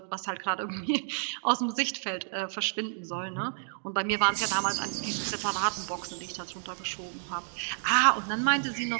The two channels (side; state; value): left; silent; digital silence